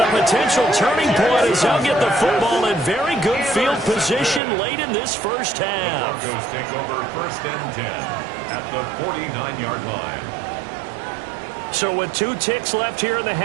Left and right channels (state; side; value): drops out; left; at 4.4 s